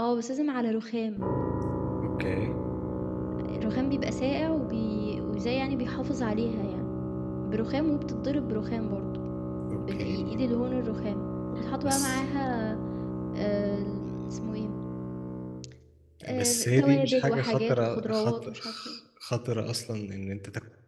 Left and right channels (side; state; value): both; identical; correlation 1.00